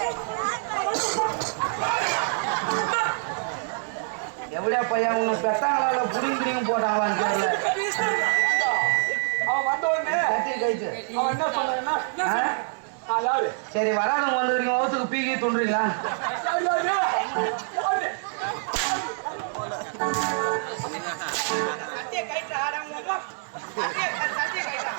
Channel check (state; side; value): silent; left; 61 dB below the other